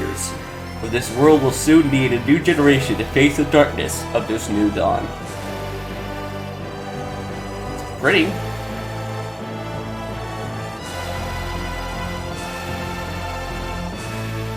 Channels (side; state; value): both; identical; correlation 1.00